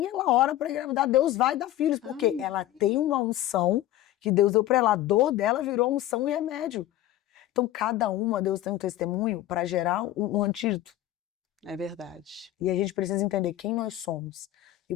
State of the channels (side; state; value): right; quieter; 14.1 dB